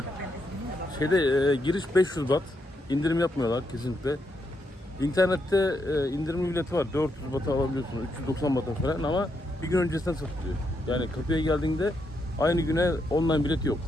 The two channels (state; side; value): normal; both; correlation 0.80